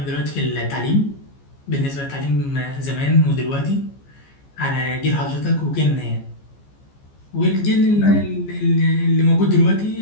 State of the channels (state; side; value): late; right; 14 ms